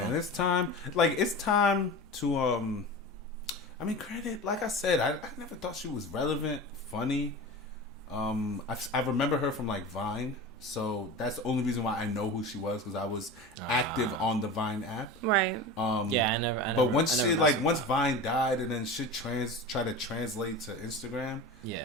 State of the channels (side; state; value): both; normal; correlation 0.30